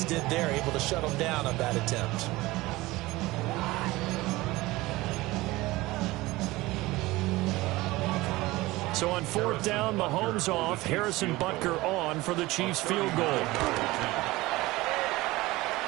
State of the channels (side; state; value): left; quieter; 19.7 dB